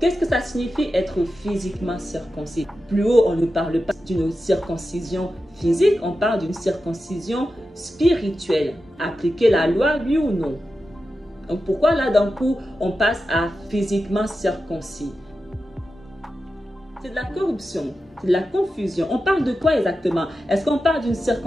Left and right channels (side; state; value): both; normal; correlation 0.91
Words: que ça signifie être physiquement circoncis? Plus haut, on ne parle pas d'une circoncision physique, on parle d'une circoncision spirituelle. Appliquer la loi, oui ou non? Donc pourquoi là d'un coup, on passe à physiquement circoncis? C'est de la corruption, c'est de la confusion. On parle de quoi exactement? Est-ce qu'on parle d'une